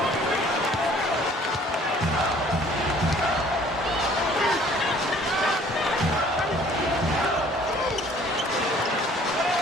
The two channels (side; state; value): both; normal; correlation 0.55